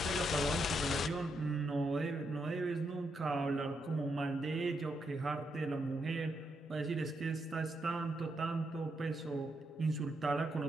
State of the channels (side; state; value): both; normal; correlation 0.80